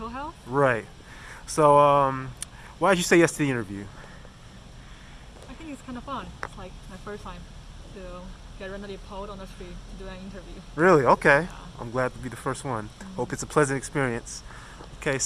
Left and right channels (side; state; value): both; identical; correlation 1.00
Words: health. Right. So, why did you say yes to the interview? I think it's kind of fun. It's like my first time to get randomly pulled on the street to do an interview. Really? Okay. Yeah. I'm glad to be the first one. Hope it's a pleasant experience. Okay,